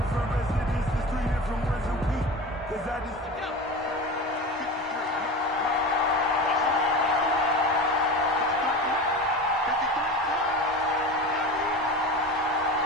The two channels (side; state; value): both; normal; correlation 0.30